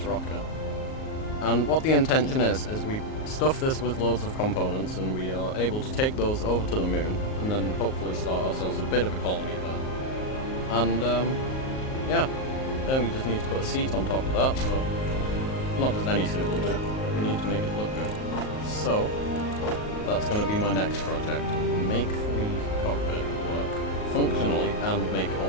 rocket, and what the intention is we stuff this with loads of components and we are able to take those over to the moon and then hopefully start ourselves a bit of a colony there. And yeah, then we just need to put a seat on top of that, but not just any seat will do, we need to make it look good. So that's going to be my next project, make the cockpit work functionally and make it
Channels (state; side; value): late; right; 38 ms